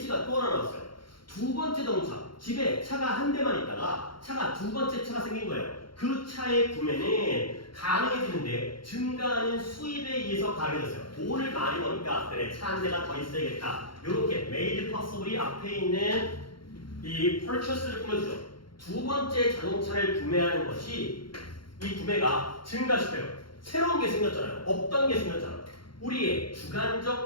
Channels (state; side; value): late; right; 0.73 ms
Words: 또 하나 나왔어요. 두 번째 동사. 집에 차가 한 대만 있다가 차가 두 번째 차가 생긴 거예요. 그 차의 구매는 가능해지는데 증가하는 수입에 의해서 가능해졌어요. 돈을 많이 버니까 그래 차 한 대가 더 있어야겠다. 이렇게 made possible이 앞에 있는 이 purchase를 꾸며주죠. 두 번째 자동차를 구매하는 것이 이 구매가 증가시켜요. 새로운 게 생겼잖아요. 없던 게 생겼잖아요. 우리의